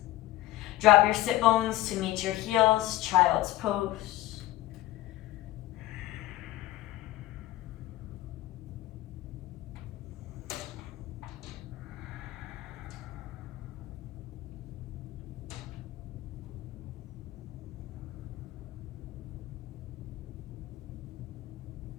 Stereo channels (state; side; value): quieter; right; 15.9 dB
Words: Drop your sit bones to meet your heels, child's pose.